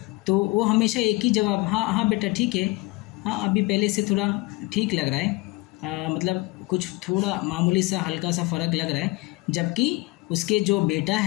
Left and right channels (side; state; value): right; quieter; 22.6 dB